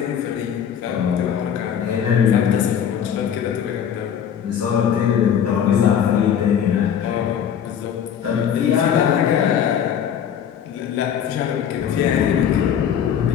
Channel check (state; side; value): quieter; right; 8.7 dB